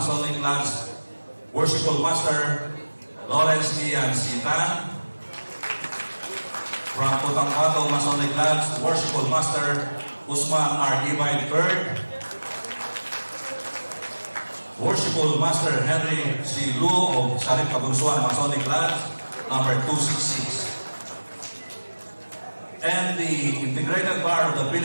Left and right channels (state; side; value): inverted; both; correlation -1.00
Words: Lodge, Worshipful Master Lawrence Ian Sitan, from Putangkato Masonic Lodge, Worshipful Master Usman R. Ibay III, Worshipful Master Henry C. Lu of Sharif Kabunsuan Masonic Lodge, number 266. And the Integrated Bar of the